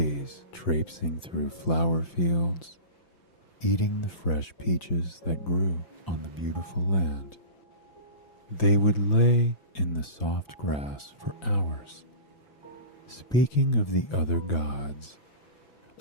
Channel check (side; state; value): right; late; 5.9 ms